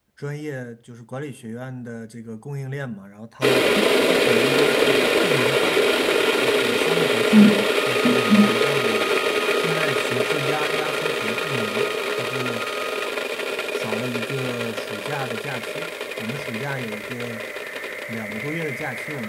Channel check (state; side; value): identical; both; correlation 1.00